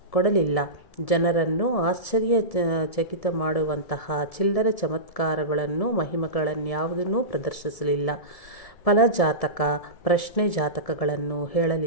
ಕೊಡಲಿಲ್ಲ. ಜನರನ್ನು ಆಶ್ಚರ್ಯಚಕಿತ ಮಾಡುವಂತಹ ಚಿಲ್ಲರೆ ಚಮತ್ಕಾರಗಳನ್ನು ಮಹಿಮೆಗಳನ್ಯಾವುದನ್ನೂ ಪ್ರದರ್ಶಿಸಲಿಲ್ಲ. ಫಲಜಾತಕ ಪ್ರಶ್ನೆ ಜಾತಕಗಳನ್ನು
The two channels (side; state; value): right; late; 1.7 ms